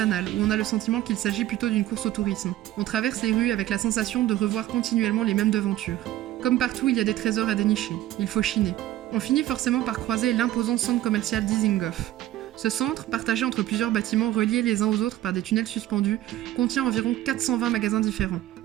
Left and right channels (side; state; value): left; quieter; 14.3 dB